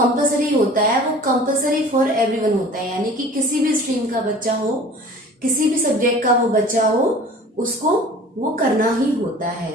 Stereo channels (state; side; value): normal; both; correlation 0.44